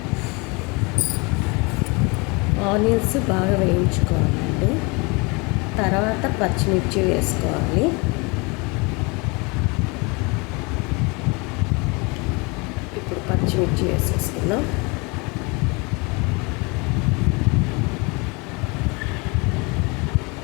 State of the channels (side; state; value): right; quieter; 28.6 dB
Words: ఆనియన్స్ బాగా వేయించుకోవాలండి. తర్వాత పచ్చిమిర్చి వేసుకోవాలి. ఇప్పుడు పచ్చిమిర్చి వేసేసుకుందాం.